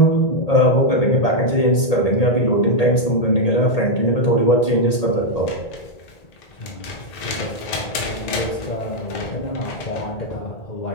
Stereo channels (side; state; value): right; late; 1.8 ms